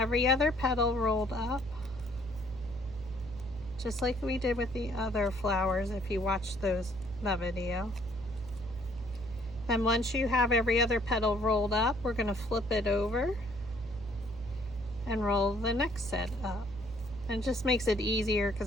other petal rolled up, just like we did with the other flowers if you watched that video. Then once you have every other petal rolled up, we're going to flip it over and roll the next set up. And it just makes it easier because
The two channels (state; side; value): noise; right; hum, 16 dB below the sound